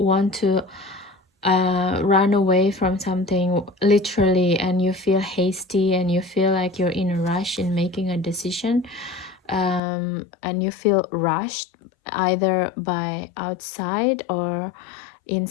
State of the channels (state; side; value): drops out; right; at 9.8 s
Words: to run away from something literally, and you feel hasty and you feel like you're in a rush in making a decision, and you feel rushed either by outside or